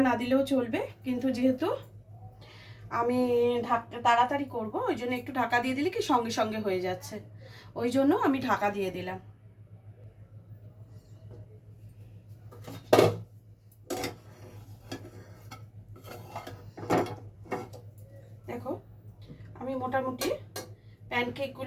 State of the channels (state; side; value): identical; both; correlation 1.00